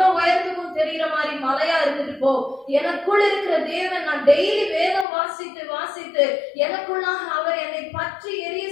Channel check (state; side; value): drops out; right; at 5.1 s